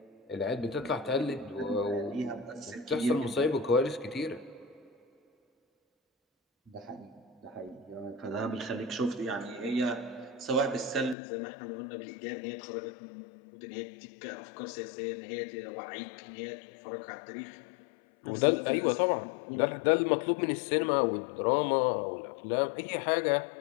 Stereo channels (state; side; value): drops out; right; at 11.2 s